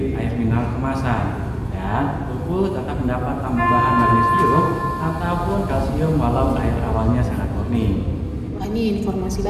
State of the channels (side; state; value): both; identical; correlation 1.00